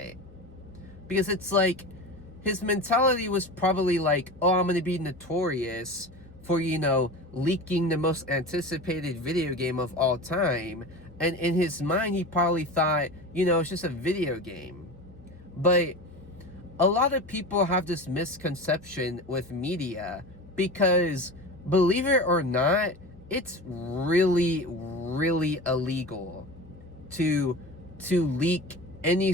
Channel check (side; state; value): both; normal; correlation 0.31